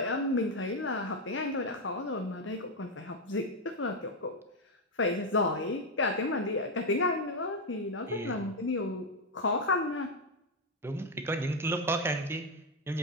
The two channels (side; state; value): both; normal; correlation 0.06